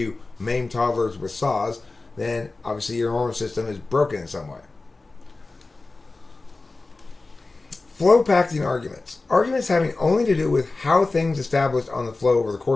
maim toddlers with saws, then obviously your normative system is broken in some way. Flow packing arguments. Arguments having only to do with how things established on the flow over the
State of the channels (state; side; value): quieter; right; 3.5 dB